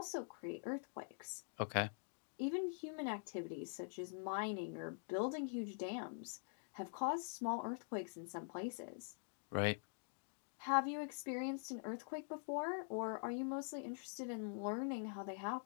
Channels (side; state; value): right; silent; digital silence